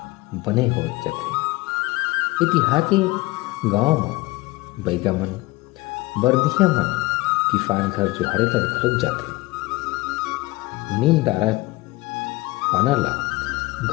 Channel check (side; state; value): right; quieter; 21.4 dB